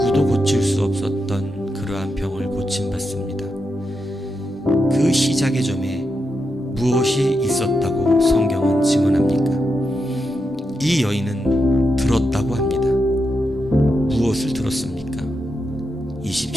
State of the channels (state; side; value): normal; both; correlation 0.85